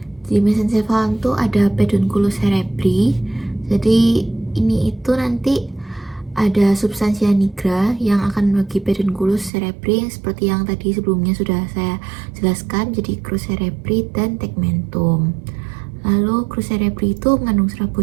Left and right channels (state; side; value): drops out; left; at 9.5 s